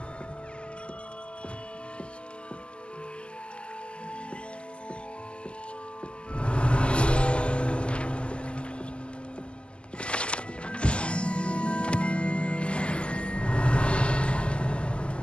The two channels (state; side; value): late; right; 0.052 ms